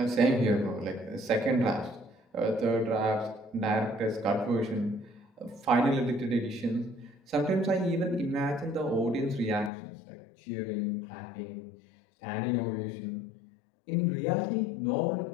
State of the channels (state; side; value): drops out; right; at 9.7 s